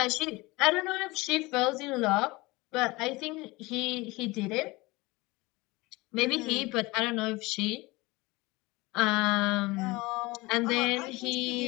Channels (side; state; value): right; quieter; 22.5 dB